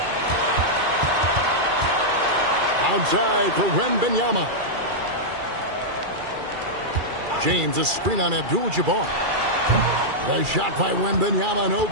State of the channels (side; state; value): left; late; 2.4 ms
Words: Outside for Wembanyama. James, a screen on Abdul-Jabbar. The shot by Wembanyama, no